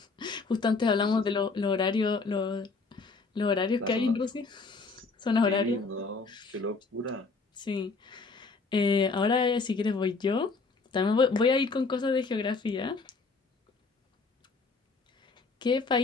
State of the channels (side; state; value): right; quieter; 4.2 dB